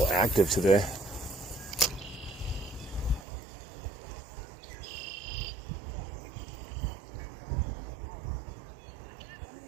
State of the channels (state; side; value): drops out; left; at 3.2 s